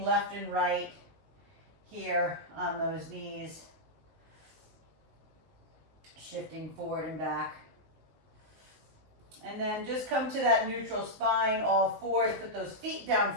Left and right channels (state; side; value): late; left; 19 ms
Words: left and right here on those knees, shifting forward and back. And then just come to that neutral spine, all fours, put those feet down